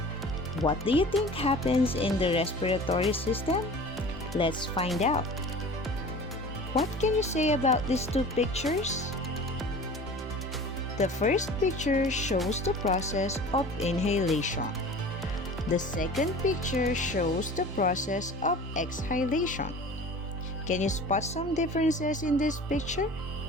What do you think happens in the respiratory system? Let's find out. What can you say about these two pictures? The first picture shows the process of inhalation. The second picture shows the process of exhalation. Can you spot some differences in this picture?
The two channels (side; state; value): both; normal; correlation 0.40